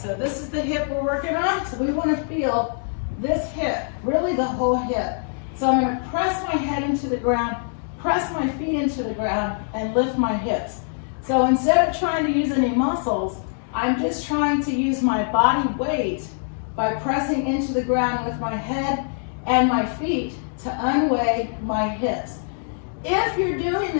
So this is the hip we're working on. So we want to feel this hip, really the whole hip. So I'm going to press my head into the ground, press my feet into the ground, and lift my hips. So instead of trying to use any muscles, I'm just trying to use my body weight by pressing into the ground with my head and my feet to unweigh my hips. If you're doing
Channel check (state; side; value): silent; right; digital silence